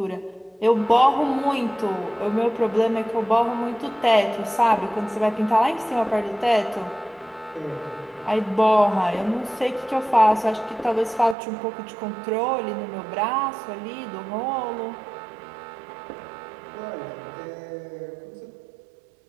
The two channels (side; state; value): left; drops out; at 11.4 s